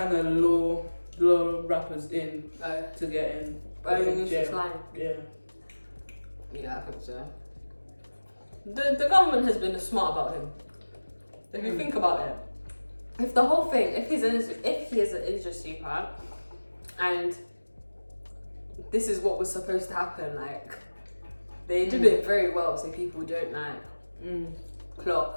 of lure rappers in to get in. Jail. Yeah. Yeah, I think so. The government has been smart about him. If you think about it, if the whole thing, if he is an industry super, and this is what was supposed to happen. Like, they did it very well, so people don't like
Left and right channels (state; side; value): inverted; both; correlation -1.00